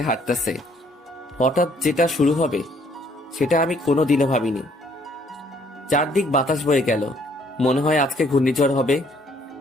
হাঁটতেছে। হঠাৎ যেটা শুরু হবে সেটা আমি কোনোদিনও ভাবিনি। চারদিক বাতাস বয়ে গেল, মনে হয় আজকে ঘূর্ণিঝড় হবে।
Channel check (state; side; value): normal; both; correlation 0.64